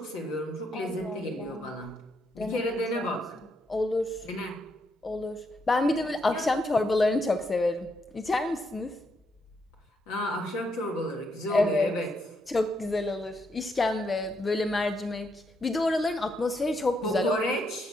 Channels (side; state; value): both; normal; correlation 0.78